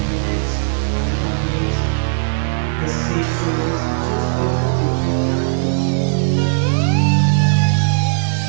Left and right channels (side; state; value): left; silent; 65 dB below the other